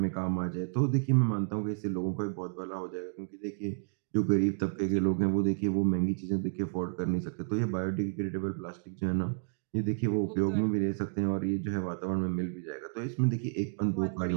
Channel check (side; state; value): left; silent; 57 dB below the other